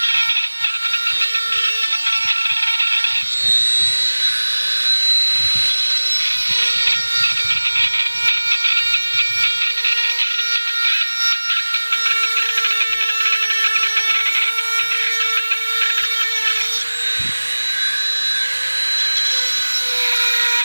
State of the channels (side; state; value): both; inverted; correlation -1.00